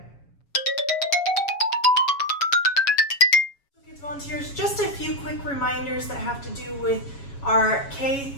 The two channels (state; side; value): late; right; 7.2 ms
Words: Kids Volunteers, just a few quick reminders that have to do with our K